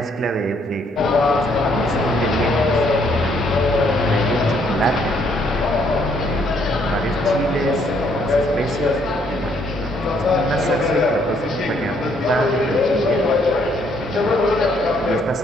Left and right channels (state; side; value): normal; both; correlation 0.68